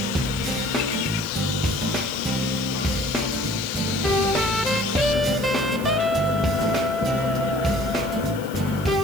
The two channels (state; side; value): noise; right; hiss, 18 dB below the sound